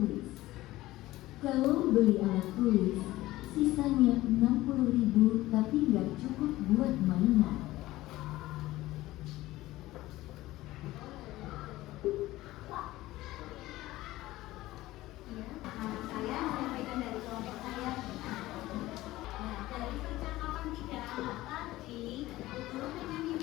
Kalau beli alat tulis, sisanya 60.000 tapi nggak cukup buat mainan." Nama saya menyampaikan dari kelompok saya. Nah, dari percakapan 3 anak tadi, guru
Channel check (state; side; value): quieter; right; 17.1 dB